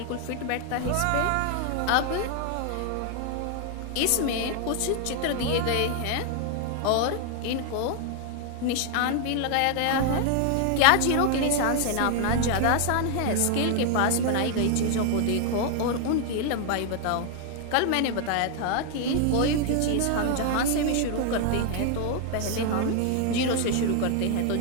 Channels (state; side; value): different; both; correlation 0.00